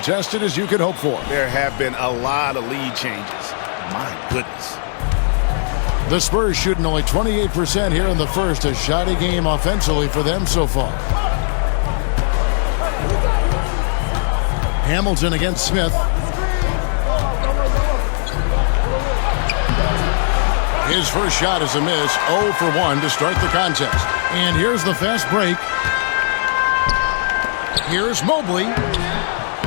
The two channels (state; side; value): silent; right; digital silence